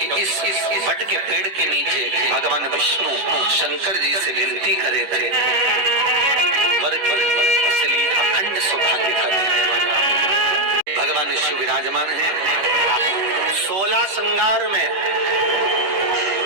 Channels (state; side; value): late; left; 10 ms